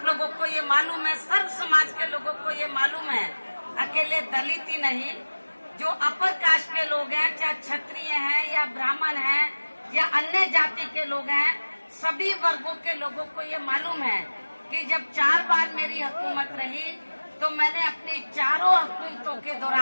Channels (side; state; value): both; inverted; correlation -1.00